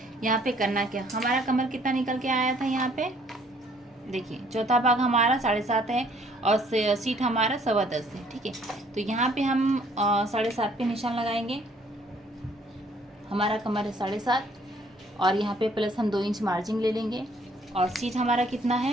यहाँ पे करना क्या, हमारा कमर कितना निकल के आया था, यहाँ पे देखिए चौथा भाग हमारा 7.5 है और सीट हमारा 10.25 है, ठीक है। तो यहाँ पे हम 7.5 पे निशान लगाएंगे। हमारा कमर है 7.5 और यहाँ पे प्लस हम 2 इंच मार्जिन ले लेंगे। और सीट हमारा कितना है,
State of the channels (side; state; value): both; normal; correlation 0.62